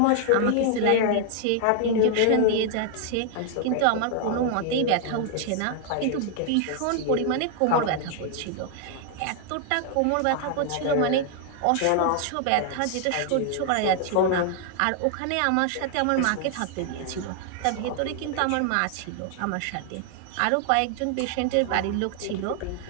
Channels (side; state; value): both; different; correlation 0.00